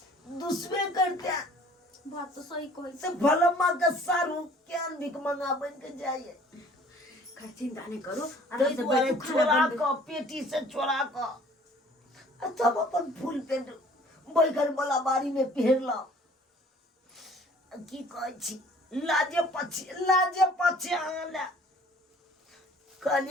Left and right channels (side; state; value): both; normal; correlation 0.53